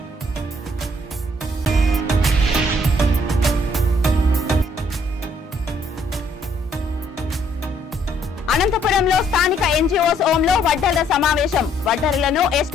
అనంతపురంలో స్థానిక ఎన్జీఓస్ హోంలో వడ్డర్ల సమావేశం. వడ్డర్లను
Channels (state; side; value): normal; both; correlation 0.67